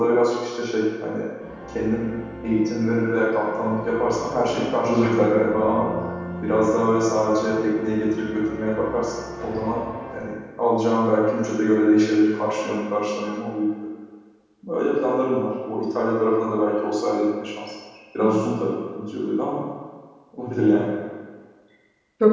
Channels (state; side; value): identical; both; correlation 1.00